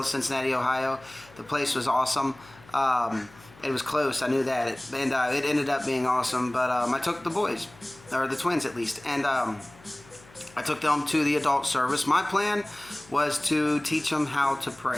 Cincinnati, Ohio. The place was awesome. It was close, I knew that, it ended up being awesome. But I took the boys, or the twins at least, and I took them to the adult service. My plan was to teach them how to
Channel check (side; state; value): left; noise; hum, 24 dB below the sound